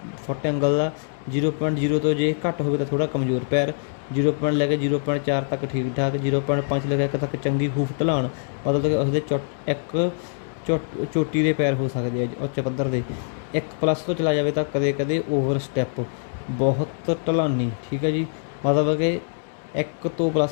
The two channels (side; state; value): right; silent; digital silence